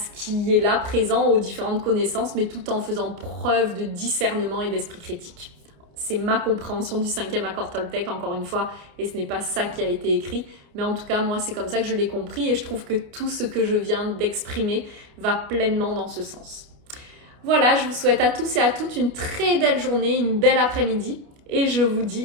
qui est là, présent, aux différentes connaissances, mais tout en faisant preuve de discernement et d'esprit critique. C'est ma compréhension du cinquième accord Toltec, encore une fois, et ce n'est pas ça qui a été écrit, mais en tout cas, moi, c'est comme ça que je l'ai compris, et je trouve que tout ce que je viens d'exprimer va pleinement dans ce sens. Voilà, je vous souhaite à tous et à toutes une très belle journée, une belle après-midi, et je vous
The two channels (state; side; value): late; left; 29 ms